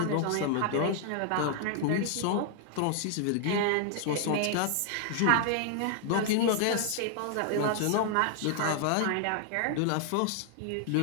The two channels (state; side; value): different; both; correlation 0.00